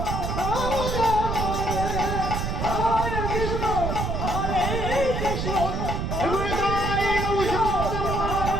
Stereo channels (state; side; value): noise; right; rumble, 2 dB below the sound